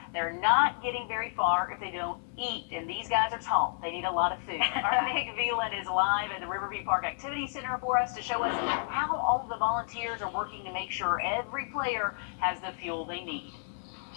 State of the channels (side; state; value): right; silent; 57 dB below the other